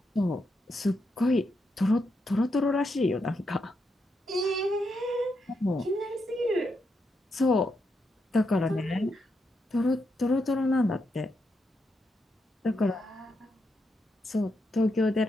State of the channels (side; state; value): both; normal; correlation 0.82